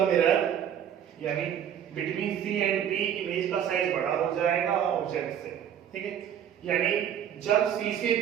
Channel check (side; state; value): left; quieter; 9.5 dB